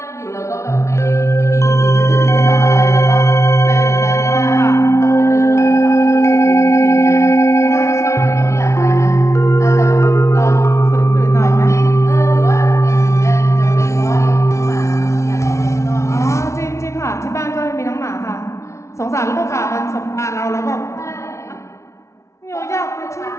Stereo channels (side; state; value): right; late; 0.14 ms